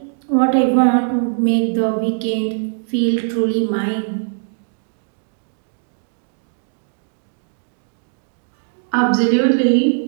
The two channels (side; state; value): left; silent; digital silence